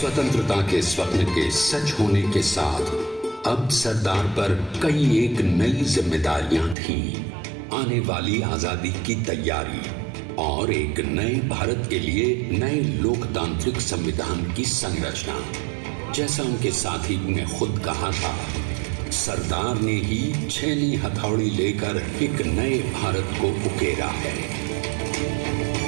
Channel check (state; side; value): drops out; left; at 6.8 s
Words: के स्वप्न के सच होने के साथ अब सरदार पर कई एक नई जिम्मेदारियां थीं। आने वाली आजादी की तैयारी और एक नए भारत के लिए नए लोकतांत्रिक संविधान की संरचना। जैसा उनके साथी ने खुद कहा था, सरदार ने ही 6वीं हथौड़ी लेकर एक नए भारत को उकेरा है।